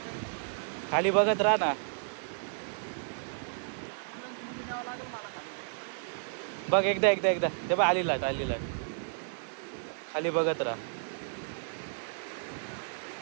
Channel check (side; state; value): left; silent; digital silence